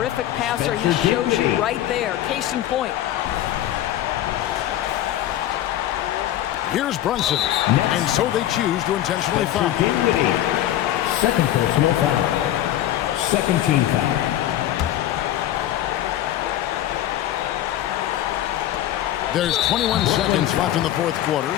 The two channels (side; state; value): right; quieter; 12.7 dB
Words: passer, he shows you right there. Case in point. Here's Brunson, and so they choose to intentionally foul. Second personal foul. Second team foul. There's 21 seconds left in the fourth quarter,